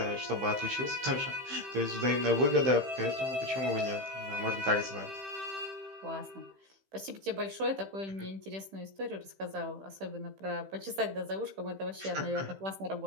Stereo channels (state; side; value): late; left; 15 ms